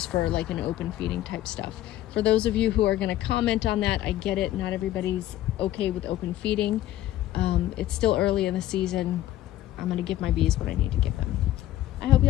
for like an open feeding type stuff. For those of you who are going to comment on that, I get it. Not everybody's okay with open feeding. It's still early in the season. I'm going to give my bees what I need to give them. I hope you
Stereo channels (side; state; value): right; quieter; 13.9 dB